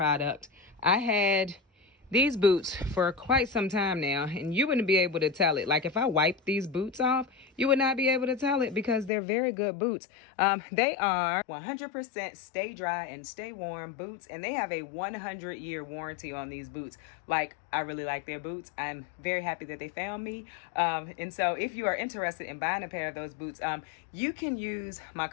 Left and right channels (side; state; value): right; drops out; at 9.1 s